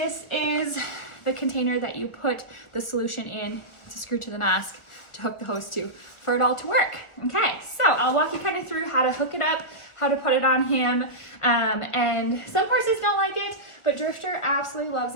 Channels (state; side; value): late; right; 1.3 ms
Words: is the container that you put the solution in to screw to the mask to hook the hose to for it all to work. Okay, so I'll walk you kind of through how to hook it up, how to put it on him. And some horses don't like it, but Drifter absolutely loves